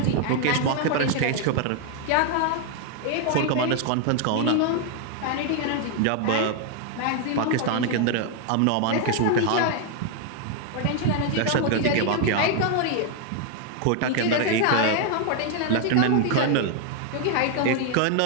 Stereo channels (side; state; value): both; different; correlation 0.00